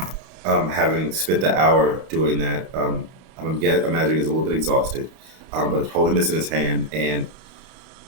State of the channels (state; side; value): late; left; 31 ms